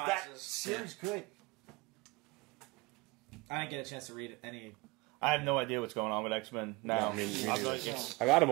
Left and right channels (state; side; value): quieter; left; 24.8 dB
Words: series good? I didn't get a chance to read any. I have no idea what's going on with X-Men now. Me I'm neither. like, it's- I got them